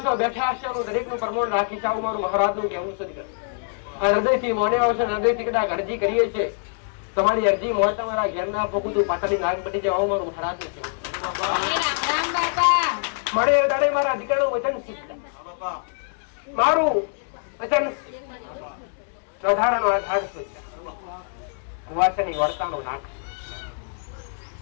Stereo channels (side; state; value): right; silent; digital silence